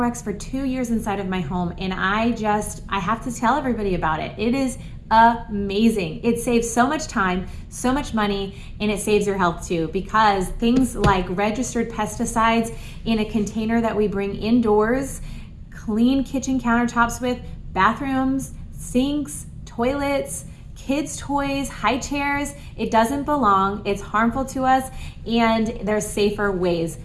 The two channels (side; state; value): both; identical; correlation 1.00